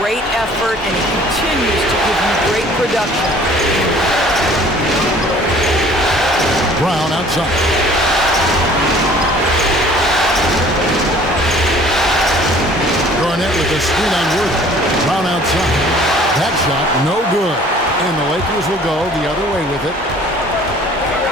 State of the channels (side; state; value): both; normal; correlation 0.52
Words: effort, and he continues to give you great production. Brown outside. Garnett with the screen on Worthy. Brown outside. That shot, no good. And the Lakers will go the other way with it.